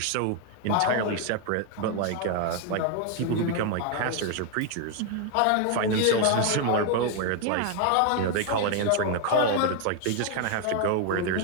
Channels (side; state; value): both; different; correlation 0.01